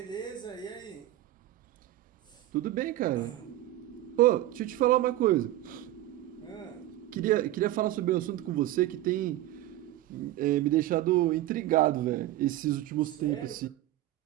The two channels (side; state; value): left; quieter; 14.8 dB